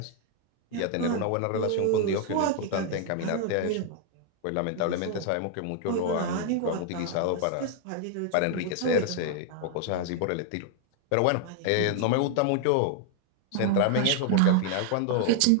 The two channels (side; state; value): both; different; correlation 0.00